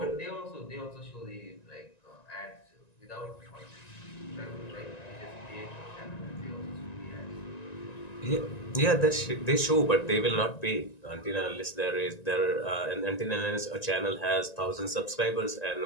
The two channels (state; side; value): late; right; 1.9 ms